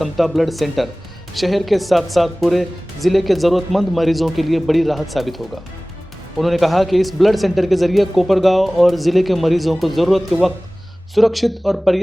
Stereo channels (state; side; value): normal; both; correlation 0.98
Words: ब्लड सेंटर शहर के साथ साथ पूरे जिले के जरूरतमंद मरीजों के लिए बड़ी राहत साबित होगा। उन्होंने कहा कि इस ब्लड सेंटर के जरिए कोपरगांव और जिले के मरीजों को जरूरत के वक्त सुरक्षित और